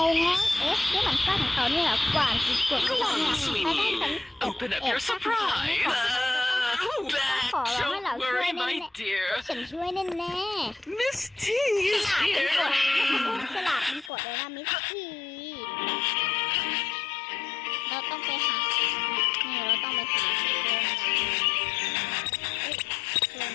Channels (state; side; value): drops out; right; at 14.1 s